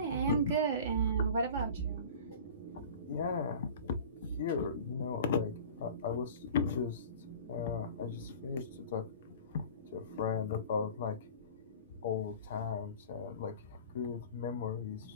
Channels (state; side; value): inverted; both; correlation -0.40